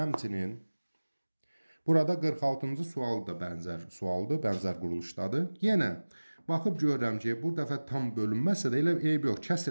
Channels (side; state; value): both; inverted; correlation -1.00